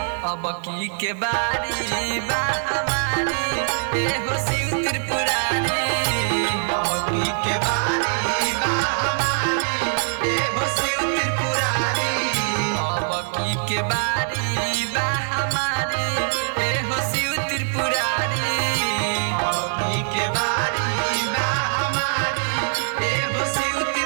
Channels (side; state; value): left; silent; digital silence